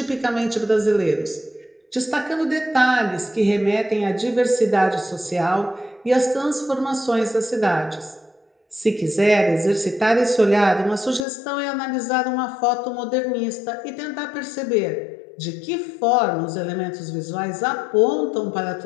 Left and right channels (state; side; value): drops out; right; at 11.2 s